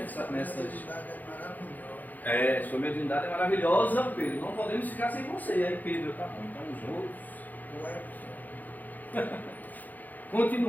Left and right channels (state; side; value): late; right; 0.083 ms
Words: Sua mediunidade é maravilhosa, Pedro, não podemos ficar sem você. Aí Pedro, tá bom, então os outros...